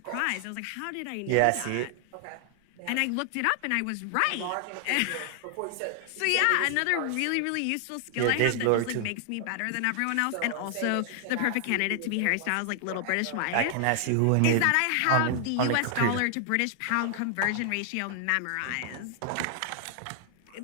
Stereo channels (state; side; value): different; both; correlation 0.00